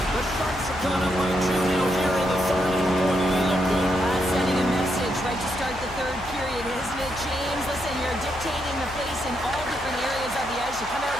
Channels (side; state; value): left; noise; hum, 16 dB below the sound